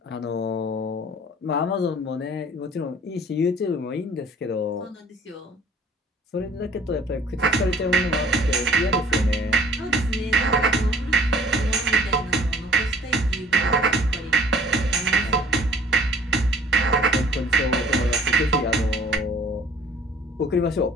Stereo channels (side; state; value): both; normal; correlation 0.53